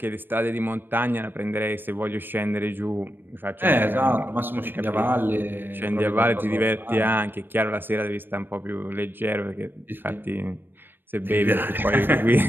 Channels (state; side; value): late; left; 0.096 ms